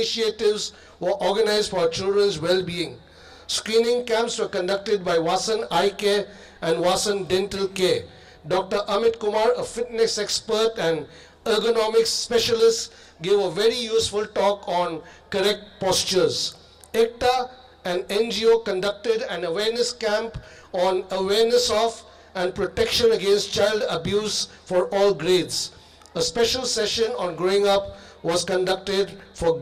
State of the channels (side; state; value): both; identical; correlation 1.00